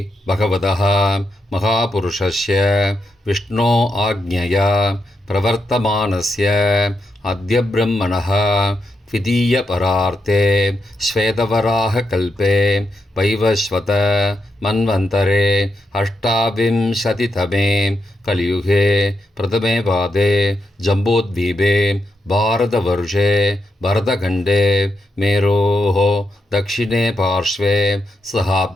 பகவதः மகாபுருஷஸ்ய விஷ்ணோ ஆக்ஞயா பிரவர்த்தமானஸ்ய அத்ய பிரம்மணः த்விதீய பரார்த்தே ஸ்வேதவராக கல்பே வைவஸ்வத மன்வந்தரே அஷ்டாவிம்சதிதமே கலியுகே பிரதமே பாதே ஜம்போத்வீபே பாரதவர்ஷே பரதகண்டே மேரோः दक्षिणे पार्श्वे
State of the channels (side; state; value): both; normal; correlation 0.84